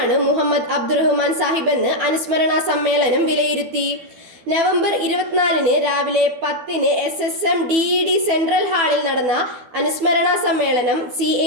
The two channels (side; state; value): left; late; 12 ms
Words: മുഹമ്മദ് അബ്ദുറഹ്മാൻ സാഹിബ് എന്ന് അനുസ്മരണ സമ്മേളനം വിലയിരുത്തി. നവംബർ 24 രാവിലെ 10 SSM DED സെൻട്രൽ ഹാളിൽ നടന്ന അനുസ്മരണ സമ്മേളനം CA